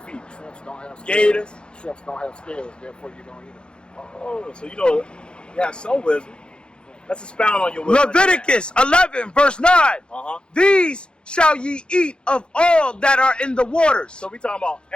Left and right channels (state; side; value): late; right; 0.052 ms